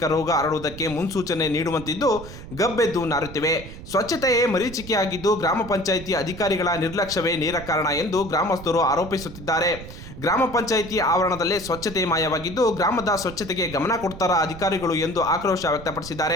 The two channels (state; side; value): noise; right; rumble, 13 dB below the sound